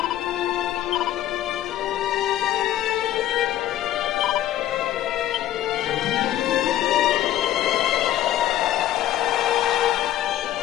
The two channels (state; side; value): quieter; right; 13.1 dB